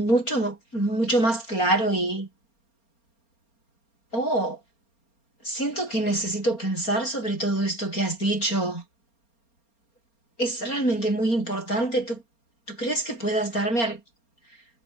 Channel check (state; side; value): late; right; 4.3 ms